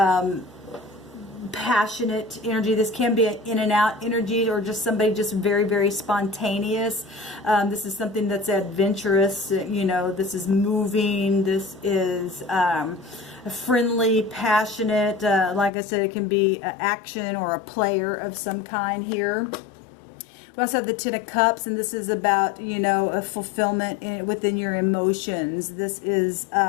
passionate energy. This can be an in and out energy, or just somebody just very, very spontaneous. This is something that's adventurous. You know, this is moving. This is friendly, passionate. Like I said, it can be action or a player of some kind here. We also have the 10 of Cups, and this is about, you know, a fulfillment within your emotions. This is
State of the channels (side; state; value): right; drops out; at 15.7 s